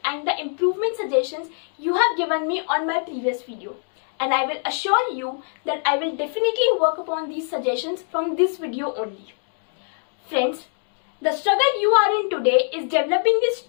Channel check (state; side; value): silent; right; 57 dB below the other